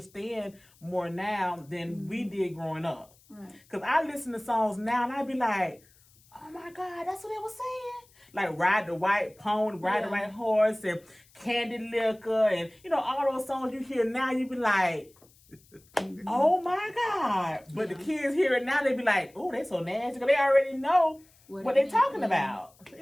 more now than we did growing up. Right. Cause I listen to songs now and I be like, oh my God, that's what they was saying. Like Ride the White Pony, Ride the White Horse, and Candy Liquor, and you know, all those songs you hear now, you be like, oh my God. But the kids hear it now, they be like, oh, they so nasty. Cause they already know what they talking about.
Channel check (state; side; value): noise; left; hiss, 29 dB below the sound